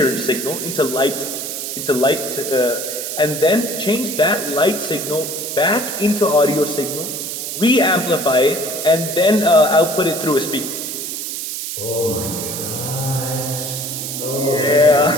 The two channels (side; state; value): right; noise; hiss, 5 dB below the sound